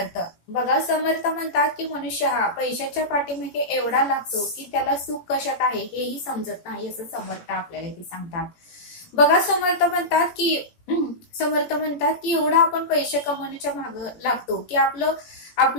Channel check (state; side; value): late; right; 18 ms